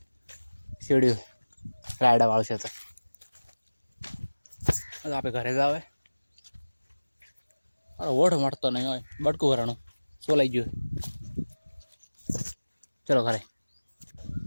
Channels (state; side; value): inverted; both; correlation -1.00